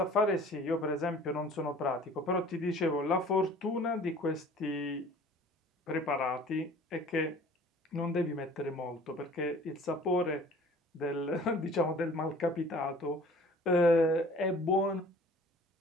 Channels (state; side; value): normal; both; correlation 0.49